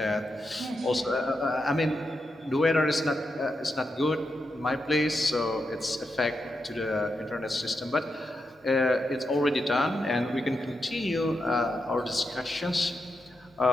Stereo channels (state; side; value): normal; both; correlation 0.86